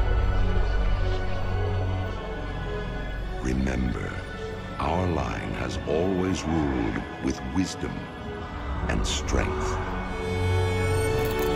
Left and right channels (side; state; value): both; identical; correlation 1.00